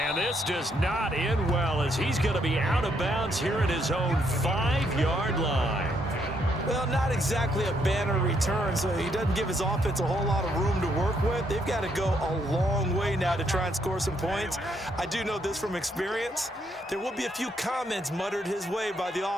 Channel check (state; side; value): normal; both; correlation 0.74